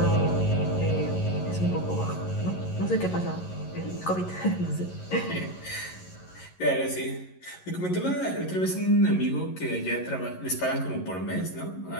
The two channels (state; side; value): late; right; 11 ms